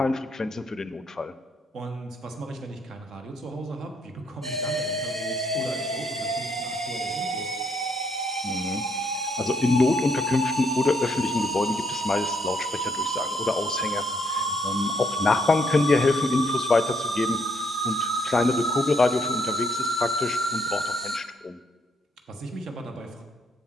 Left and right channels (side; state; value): both; normal; correlation 0.71